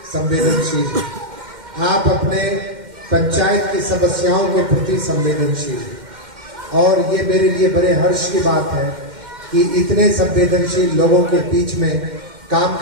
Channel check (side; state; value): left; late; 2.1 ms